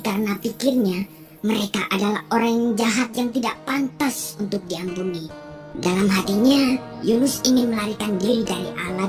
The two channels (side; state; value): both; identical; correlation 1.00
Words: karena pikirnya mereka adalah orang yang jahat yang tidak pantas untuk diampuni. Dalam hatinya, Yunus ingin melarikan diri dari